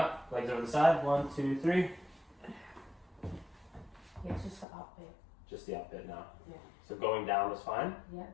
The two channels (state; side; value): drops out; right; at 4.7 s